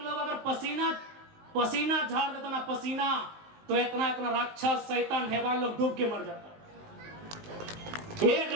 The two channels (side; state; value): left; late; 19 ms